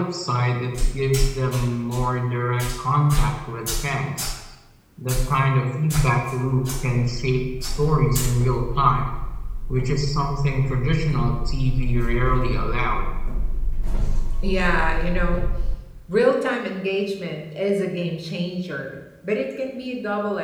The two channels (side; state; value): both; identical; correlation 1.00